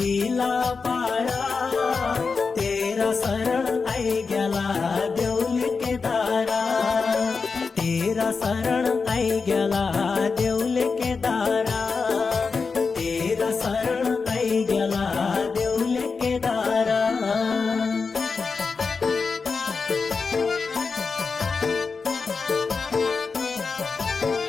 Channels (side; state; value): right; quieter; 4.8 dB